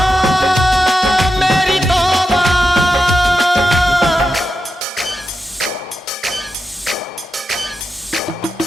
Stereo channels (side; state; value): both; normal; correlation 0.88